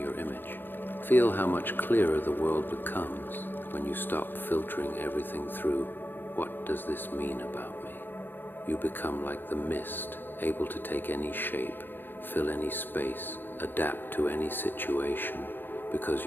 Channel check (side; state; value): right; late; 0.096 ms